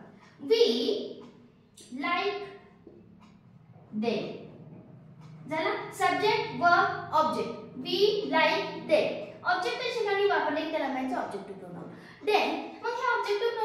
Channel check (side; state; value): both; identical; correlation 1.00